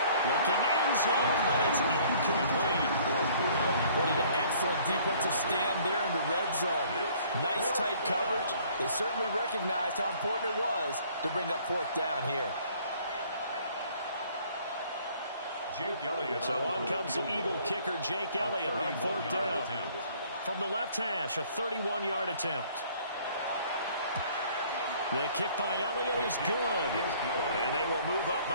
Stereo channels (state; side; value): inverted; both; correlation -0.57